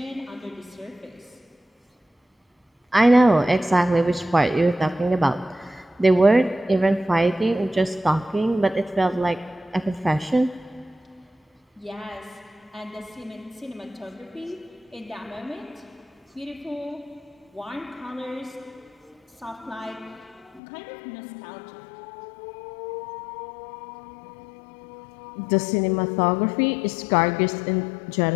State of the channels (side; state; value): right; drops out; at 20.6 s